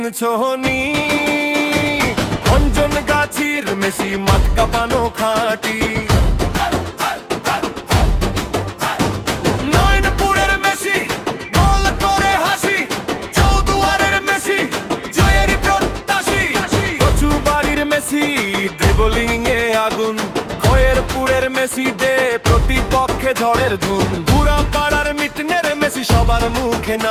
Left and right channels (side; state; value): both; identical; correlation 1.00